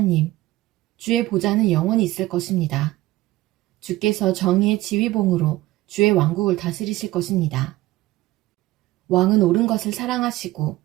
주의 보좌는 영원히 있을 것입니다. 주께서 정의의 지휘봉으로 주의 왕국을 다스리실 것입니다. 왕은 옳은 것을 사랑하시고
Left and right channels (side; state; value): left; quieter; 17.4 dB